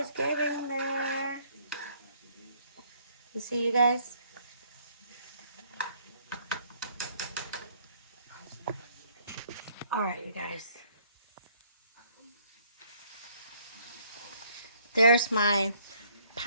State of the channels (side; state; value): both; inverted; correlation -0.64